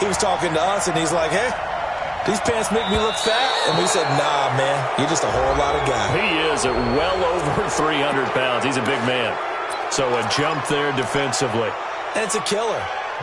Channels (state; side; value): identical; both; correlation 1.00